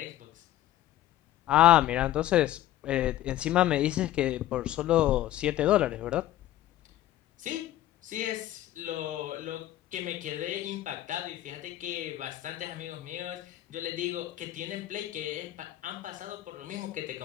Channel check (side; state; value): right; quieter; 13.9 dB